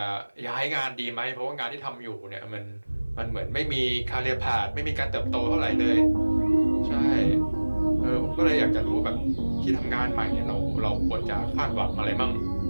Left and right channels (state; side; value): inverted; both; correlation -1.00